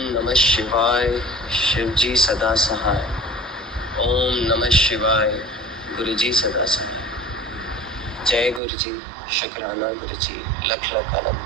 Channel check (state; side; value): drops out; left; at 8.6 s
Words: नमः शिवाय, शिव जी सदा सहाय। ओम नमः शिवाय, गुरु जी सदा सहाय। जय गुरु जी, शुक्राना गुरु जी, लख लख